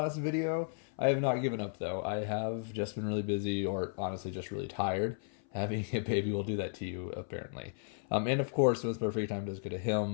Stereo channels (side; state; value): right; silent; 55 dB below the other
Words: video. I have not given up though. I have just been really busy, or honestly just really tired. Having a baby will do that to you, apparently. And of course, most of our free time does go to